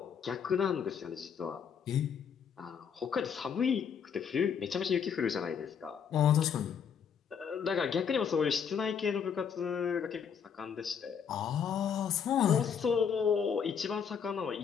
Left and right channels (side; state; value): right; quieter; 7.2 dB